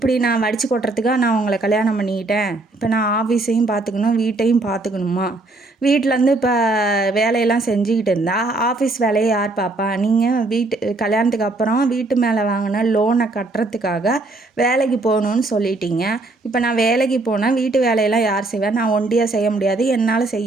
நான் வடித்து கொட்டுறதுக்காக நான் உங்களை கல்யாணம் பண்ணிக்கிட்டேன், இப்போ நான் ஆஃபீஸையும் பார்த்துக்கணும் வீட்டையும் பார்த்துக்கணுமா, வீட்டிலேருந்து இப்போ வேலையெல்லாம் செஞ்சுக்கிட்டு இருந்தால் ஆஃபீஸ் வேலையை யார் பார்ப்பா? நீங்கள் கல்யாணத்துக்கு அப்புறம் வீட்டு மேலே வாங்கின லோனை கட்டுறதுக்காக வேலைக்கு போகணுன்னு சொல்லிட்டீங்க. இப்போ நான் வேலைக்கு போனால் வீட்டு வேலையெல்லாம் யார் செய்வேன்? நான் ஒண்டியாக செய்ய முடியாது, என்னால்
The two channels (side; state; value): left; quieter; 3.1 dB